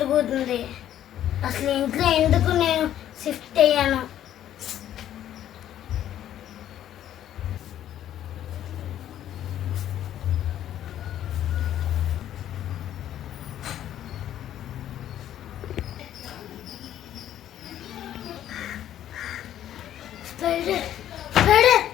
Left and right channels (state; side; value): quieter; right; 11.5 dB